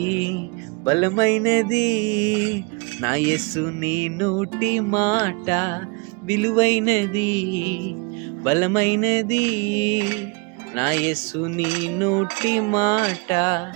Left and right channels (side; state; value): left; quieter; 31.1 dB